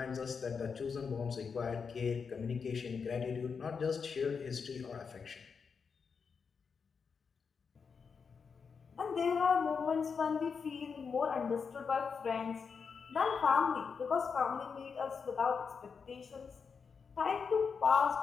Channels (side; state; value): right; quieter; 5.7 dB